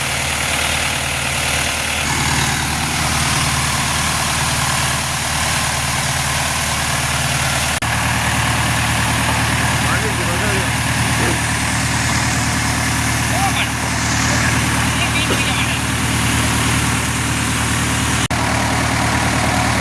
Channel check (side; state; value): both; identical; correlation 1.00